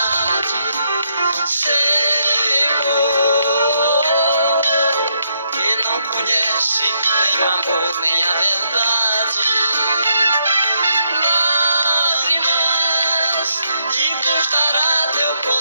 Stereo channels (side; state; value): both; inverted; correlation -0.77